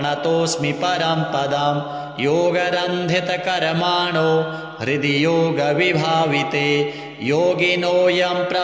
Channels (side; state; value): both; identical; correlation 1.00